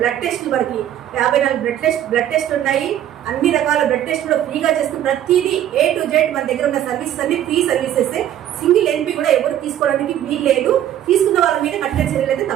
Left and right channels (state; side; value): quieter; left; 11.4 dB